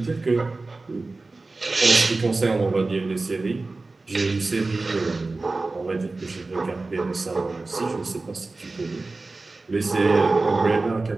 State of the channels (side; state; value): left; quieter; 3.4 dB